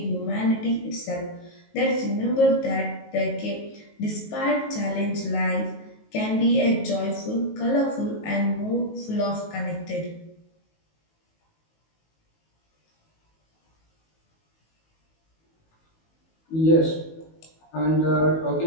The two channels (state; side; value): late; right; 19 ms